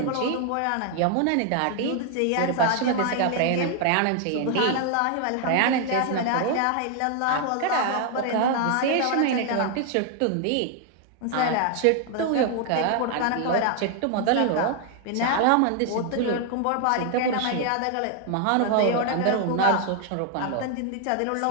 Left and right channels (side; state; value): both; different; correlation 0.00